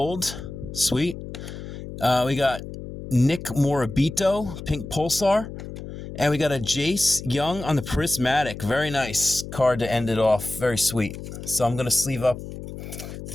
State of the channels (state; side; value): noise; left; hum, 10 dB below the sound